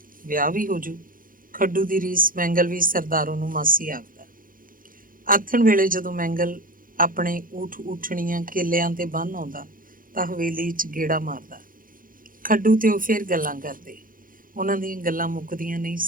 ਵਿਆਹ ਵੀ ਹੋ ਜੂ। ਖੱਡੂ ਦੀ ਰੀਸ ਮੈਂਗਲ ਵੀ ਸਰਦਾਰੋ ਨੂੰ ਮਾਸੀ ਆਖਦਾ। ਆਥਣ ਵੇਲੇ ਜਦੋਂ ਮੈਂਗਲ ਆਪਣੇ ਊਠ ਉੱਠਣੀਆਂ ਕੇਲਿਆਂ ਤੇ ਬੰਨ੍ਹ ਆਉਂਦਾ ਤਾਂ ਹਵੇਲੀ 'ਚ ਗੇੜਾ ਮਾਰਦਾ। ਖੱਡੂ ਤੇ ਉਹ ਫਿਰ ਗੱਲਾਂ ਕਰਦੇ। ਉਹਨਾਂ ਦੀਆਂ ਗੱਲਾਂ ਮੁੱਕਦੀਆਂ ਨਹੀਂ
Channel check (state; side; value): late; left; 0.40 ms